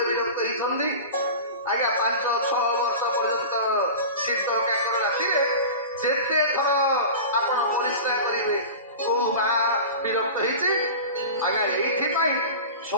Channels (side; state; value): both; inverted; correlation -0.32